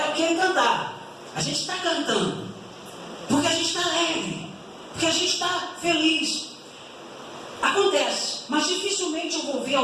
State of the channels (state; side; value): identical; both; correlation 1.00